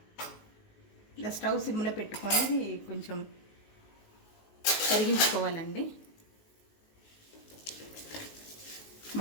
ఇలా స్టవ్ సిమ్లో పెట్టుకొని కొంచెం కరిగించుకోవాలండి.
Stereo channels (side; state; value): right; late; 19 ms